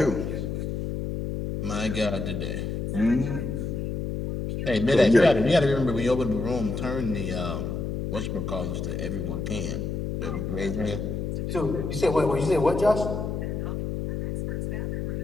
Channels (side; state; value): left; noise; hum, 3 dB below the sound